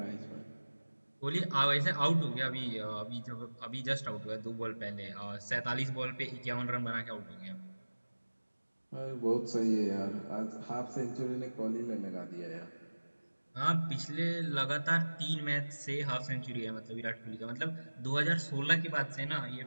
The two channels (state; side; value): inverted; both; correlation -1.00